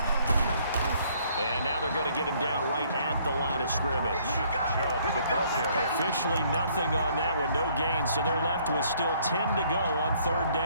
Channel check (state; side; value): inverted; both; correlation -0.63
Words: And now they're going to get him down right at the line of scrimmage. Chubb, the ball carrier. Officially nothing on that one, no gain, so they're left with still 10 to go on 3rd